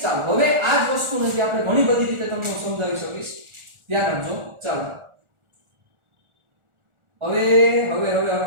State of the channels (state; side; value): late; left; 1.4 ms